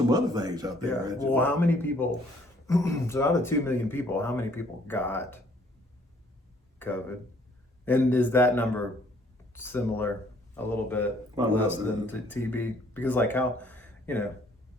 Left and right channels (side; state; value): both; normal; correlation 0.62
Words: other things out there. Yeah. Well, how many people? So out of 2 million people, how many people got COVID? And is that number similar, a little bit less than TB? Because I don't